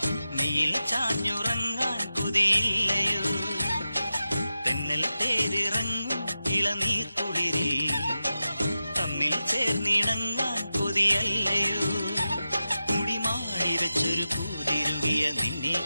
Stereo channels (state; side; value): inverted; both; correlation -0.92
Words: നീയിൽ ചാഞ്ഞുറങ്ങാൻ കൊതിയില്ലയോ. തെന്നൽ തേരിറങ്ങും ഇളനീർ കുളിരിൽ തമ്മിൽ ചേർന്നിണങ്ങാൻ കൊതിയല്ലയോ. മുടിമാടി വെച്ചൊരു പൂതിരുകിയ നിന്നെ